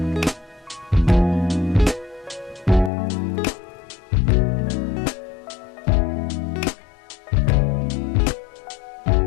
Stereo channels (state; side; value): drops out; right; at 2.9 s